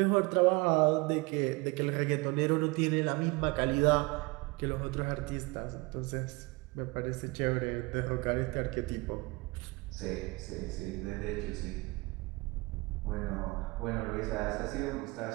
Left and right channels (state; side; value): quieter; left; 25.5 dB